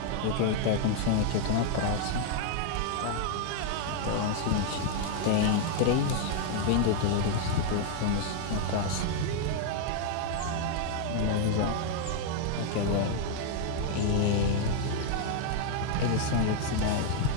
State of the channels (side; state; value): both; different; correlation 0.00